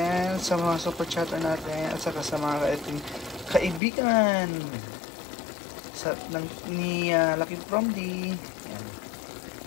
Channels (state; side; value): drops out; right; at 3.8 s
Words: sa mga super chatter natin, at saka sa mga ating kaibigan ni Lucky From D. Ayan.